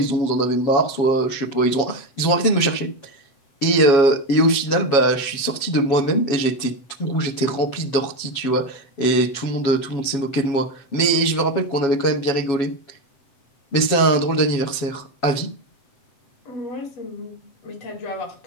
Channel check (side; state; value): right; late; 7.2 ms